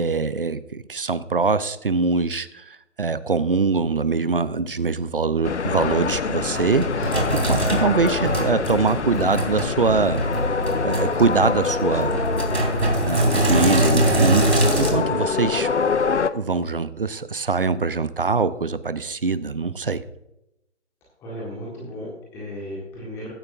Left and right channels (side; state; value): both; normal; correlation -0.16